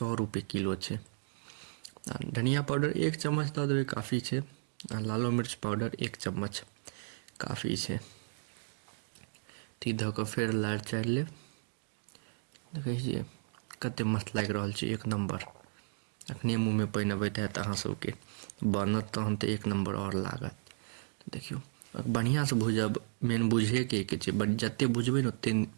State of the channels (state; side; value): silent; left; digital silence